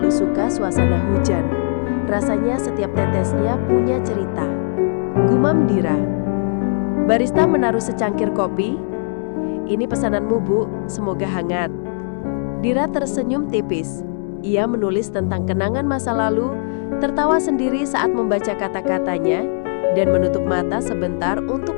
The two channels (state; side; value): silent; right; digital silence